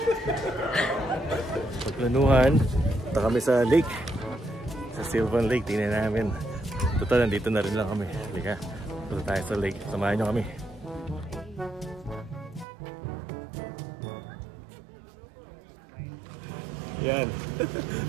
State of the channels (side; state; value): left; drops out; at 12.7 s